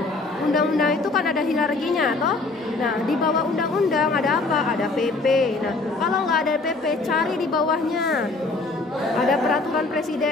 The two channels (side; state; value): right; quieter; 3.5 dB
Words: Undang-undang itu kan ada hierarkinya, toh? Nah, di bawah undang-undang ada apa? Ada PP. Nah, kalau nggak ada PP, cari di bawahnya. Ada peraturan